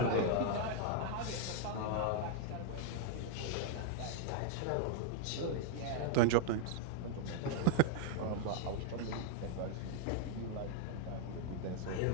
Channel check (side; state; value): both; different; correlation -0.01